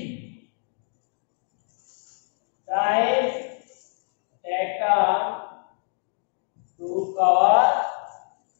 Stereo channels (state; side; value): silent; right; 61 dB below the other